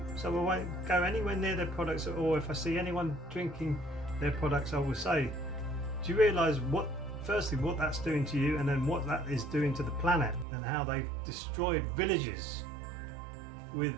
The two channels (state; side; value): drops out; left; at 10.5 s